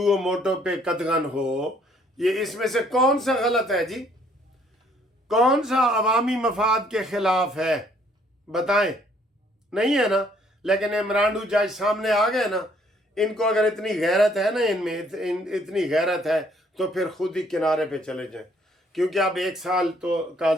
و موٹو پہ قدغن ہو، یہ اس میں سے کون سا غلط ہے جی؟ کون سا عوامی مفاد کے خلاف ہے؟ بتائیں، نہیں ہے نا؟ لیکن عمران جج سامنے آ گئے نا، ان کو اگر اتنی غیرت ہے نا، ان میں اتنی غیرت ہے تو پھر خود ہی کنارے پہ چلے جائیں، کیونکہ اب 1 سال تو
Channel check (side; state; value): both; normal; correlation 0.64